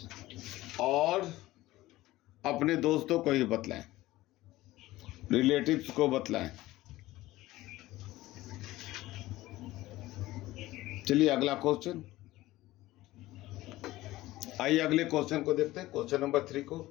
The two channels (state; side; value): quieter; right; 17.3 dB